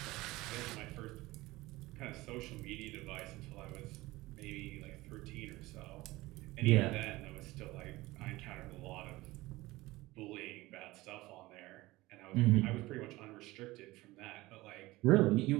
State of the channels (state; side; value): quieter; left; 19.6 dB